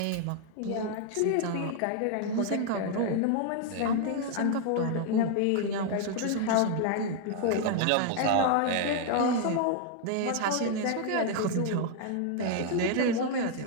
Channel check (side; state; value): both; different; correlation 0.00